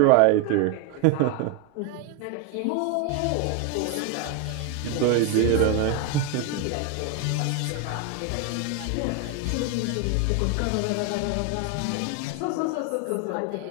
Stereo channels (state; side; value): different; both; correlation 0.01